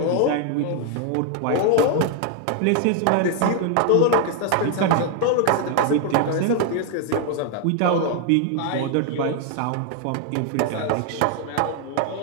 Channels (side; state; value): both; different; correlation 0.01